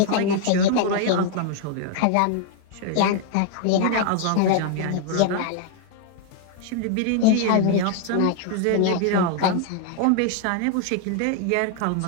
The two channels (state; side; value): different; both; correlation 0.00